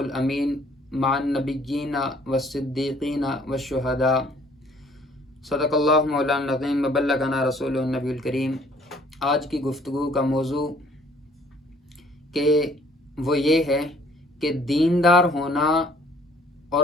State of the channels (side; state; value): both; normal; correlation 0.58